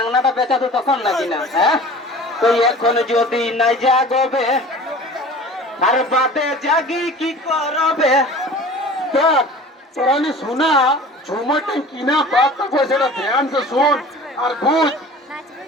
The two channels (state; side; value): normal; both; correlation 0.42